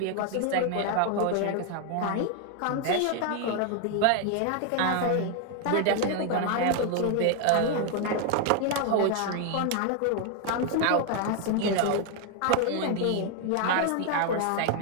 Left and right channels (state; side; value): different; both; correlation 0.00